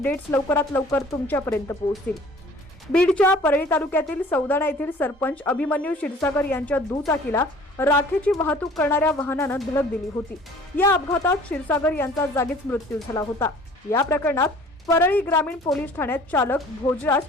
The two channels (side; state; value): both; normal; correlation 0.50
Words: लवकरात लवकर तुमच्यापर्यंत पोहोचतील। बीडच्या परळी तालुक्यातील सौदाणा येथील सरपंच अभिमन्यू क्षीरसागर यांच्या दुचाकीला राखेची वाहतूक करणाऱ्या वाहनानं धडक दिली होती। या अपघातात क्षीरसागर यांचा जागीच मृत्यू झाला होता। या प्रकरणात परळी ग्रामीण पोलीस ठाण्यात चालक भोजराज